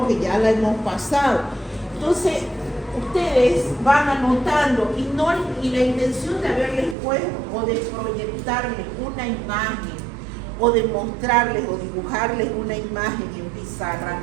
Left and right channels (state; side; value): drops out; left; at 7.0 s